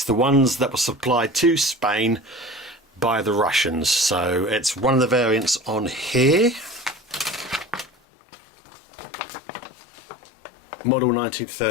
the ones that were supplied to Spain by the Russians. So, it's one of the variants on here. Model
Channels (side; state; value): right; drops out; at 7.9 s